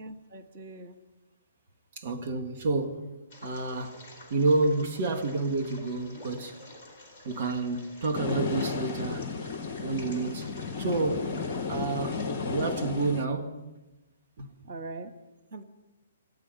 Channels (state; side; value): inverted; both; correlation -0.55